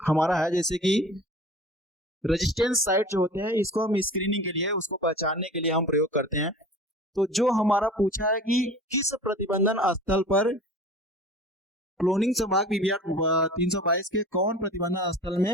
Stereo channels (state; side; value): normal; both; correlation 0.40